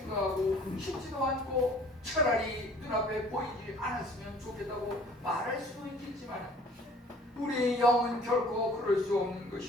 싶지도 않고 차라리 눈앞에 보이지 않았으면 좋겠다고 말할 수도 있겠지만 우리의 영은 결코 그럴 수 없는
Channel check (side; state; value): both; normal; correlation 0.53